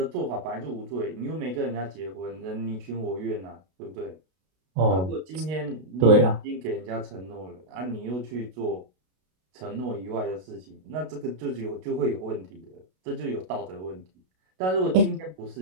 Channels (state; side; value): late; left; 32 ms